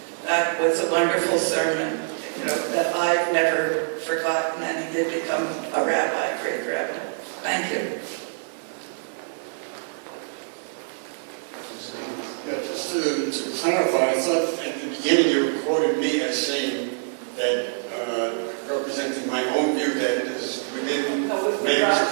That was a wonderful sermon, that I've never forgotten, and he did become a rabbi, a great rabbi. Thank you. Yeah, just to clarify, I thought at the beginning you quoted me as saying that, representing my own view, that it is within man's...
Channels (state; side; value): silent; left; digital silence